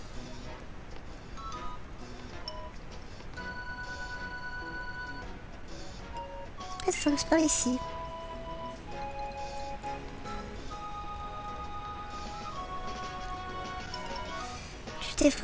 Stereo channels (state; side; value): identical; both; correlation 1.00